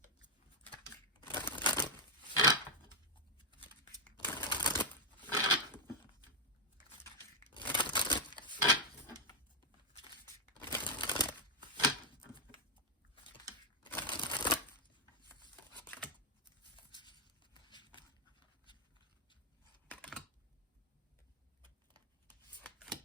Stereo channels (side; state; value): both; normal; correlation 0.02